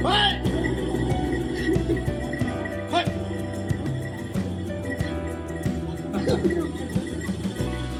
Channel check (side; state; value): both; identical; correlation 1.00